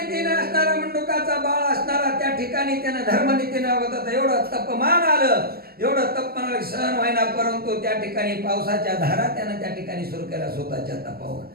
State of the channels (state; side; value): late; left; 0.45 ms